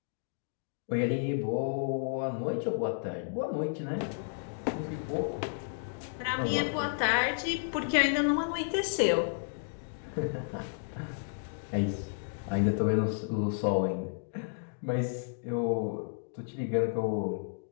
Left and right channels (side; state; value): right; silent; digital silence